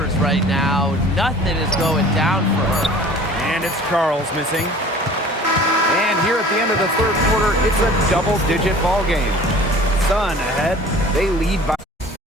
right now. Nothing is going down for her. And it's Charles missing. And here at the end of the third quarter, it's a double-digit ball game. Sun ahead. They lead by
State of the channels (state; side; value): normal; both; correlation 0.46